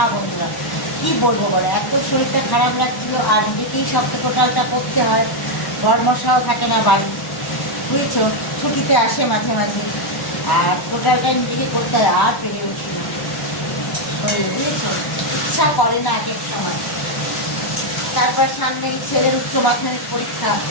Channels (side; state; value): right; late; 1.1 ms